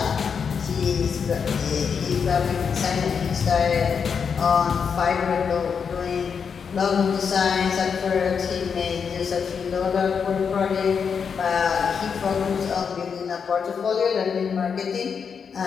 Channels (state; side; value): quieter; right; 6.4 dB